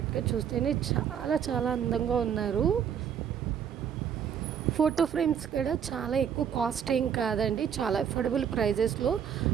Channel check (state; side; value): quieter; left; 8.3 dB